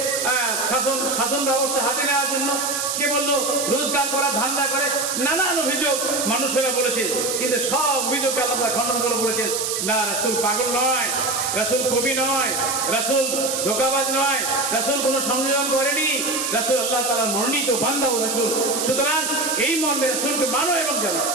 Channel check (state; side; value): noise; right; hiss, 1 dB below the sound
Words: শাসন ব্যবস্থা হাতে নেওয়ার জন্য, কে বললো রোজগার করা ধান্দা করে, নানান অভিযোগ মানুষেরা বলেছে। কিন্তু সব অভিযোগকে আল্লাহ খণ্ডন করে বলেছেন না, রাসূল পাগল নয়, রাসূল কবি নয়, রাসূল ধোঁকাবাজ নয়, রাসূল কোনো সংযোজন করেনি, রাসূল আল্লাহ তাআলার মনোনীত বান্দা ও রাসূল। সুতরাং এই মর্মে রাসূলকে মানো এবং জানো।